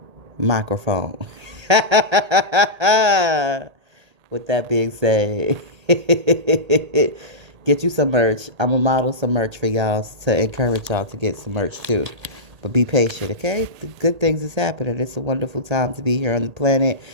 microphone. With that being said, get you some merch. I'm going to model some merch for y'all to encourage y'all to get some merch too. But be patient, okay? The good things is happening. It's a wonderful time to be here on the planet.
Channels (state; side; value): late; left; 1.8 ms